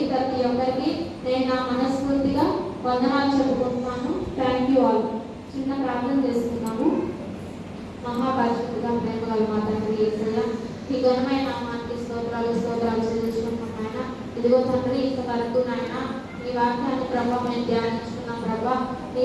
ప్రతి ఒక్కరికి నేను నా మనస్ఫూర్తిగా వందనాలు చెప్పుకుంటున్నాను. Thank you all. చిన్న ప్రార్థన చేసుకున్నాము. మహాపరిశుద్ధిగా ప్రేమ గల మా తండ్రి యేసయ్య, ఈ ఘనమైన నామానికి స్తోత్రాలు చెల్లించుకుంటున్నాం నాయన. ఇదిగో తండ్రి, ఇంతవరకు నాయన నీ వాక్యాన్ని ప్రభావ మేము ధ్యానించుకున్నాం ప్రభా. నీ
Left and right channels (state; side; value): identical; both; correlation 1.00